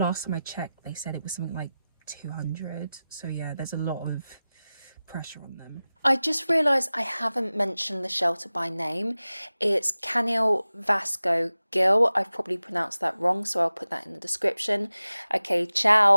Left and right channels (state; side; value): inverted; both; correlation -0.96